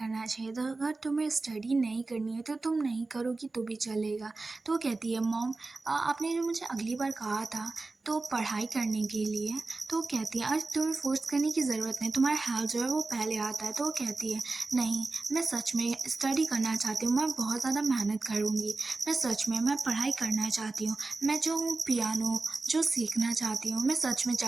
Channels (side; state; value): left; quieter; 3.5 dB